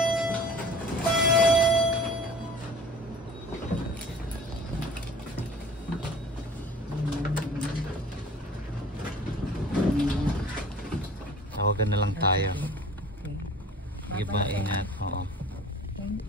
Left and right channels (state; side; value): normal; both; correlation 0.45